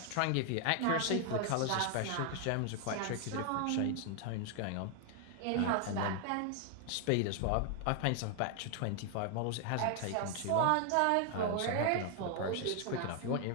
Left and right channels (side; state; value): both; different; correlation 0.00